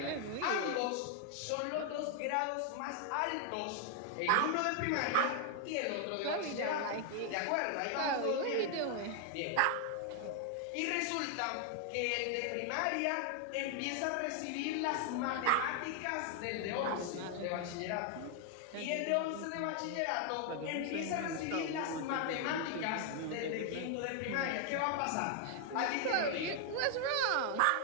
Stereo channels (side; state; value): both; different; correlation 0.00